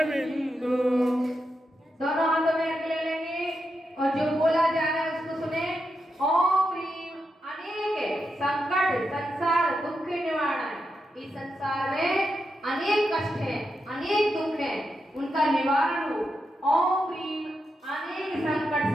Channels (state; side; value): normal; both; correlation 0.86